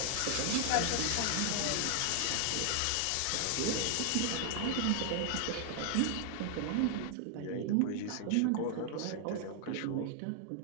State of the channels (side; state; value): both; different; correlation 0.00